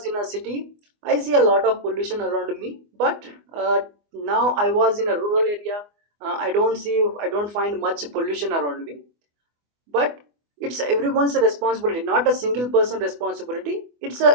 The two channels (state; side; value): late; left; 24 ms